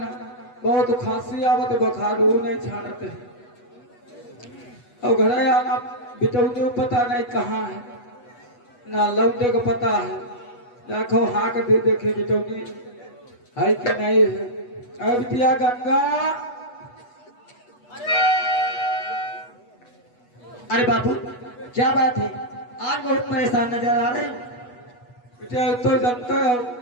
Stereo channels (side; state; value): right; late; 8.2 ms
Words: ना, बहुत खांसी आवत, बुखार वो नहीं छाड़ते हैं। और घर आना बिटौनी पता नहीं कहाँ है, ना लौटे को पता है, देखो हाँ कर दे देखे बिटौनी है कि नहीं है। अब बिटिया गंगा, अरे बापू क्या बात है, आज बहुत परेशान नजर आ रहे हो। बिटिया तो जानते हो